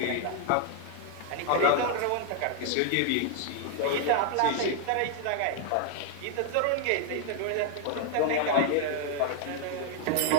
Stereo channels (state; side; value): different; both; correlation -0.01